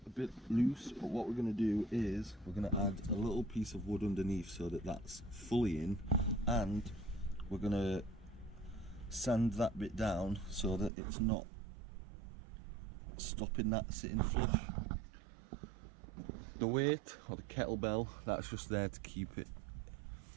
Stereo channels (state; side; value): drops out; left; at 10.9 s